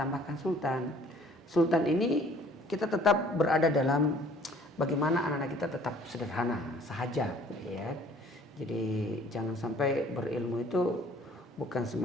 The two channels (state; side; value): normal; both; correlation 0.55